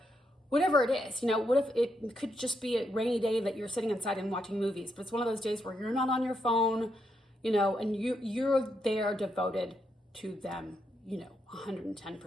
whatever it is. What if it could just be a rainy day that you're sitting inside and watching movies, but it's one of those days where you're not on your phone, and you're there devoted to them,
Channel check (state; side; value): normal; both; correlation 0.81